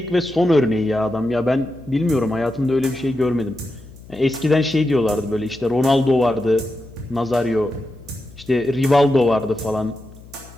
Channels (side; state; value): left; noise; hum, 20 dB below the sound